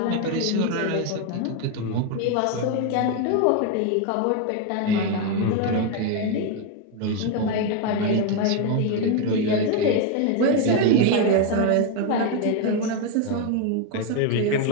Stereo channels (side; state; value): both; different; correlation 0.01